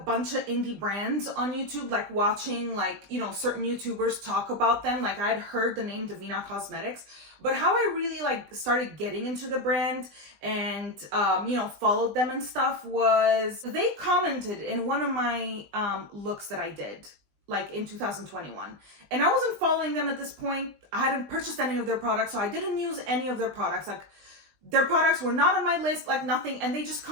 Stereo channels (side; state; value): left; late; 20 ms